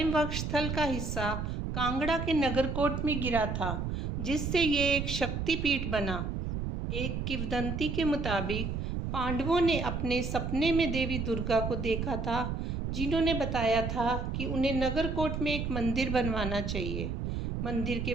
वक्षस्थल का हिस्सा कांगड़ा के नगरकोट में गिरा था, जिससे ये एक शक्तिपीठ बना। एक किंवदंती के मुताबिक पांडवों ने अपने सपने में देवी दुर्गा को देखा था, जिन्होंने बताया था कि उन्हें नगरकोट में एक मंदिर बनवाना चाहिए। मंदिर के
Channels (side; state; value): right; noise; rumble, 3 dB below the sound